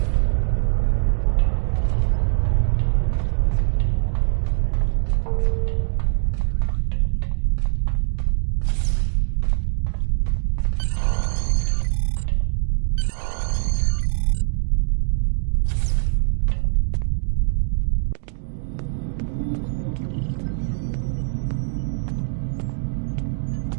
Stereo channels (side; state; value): left; silent; 64 dB below the other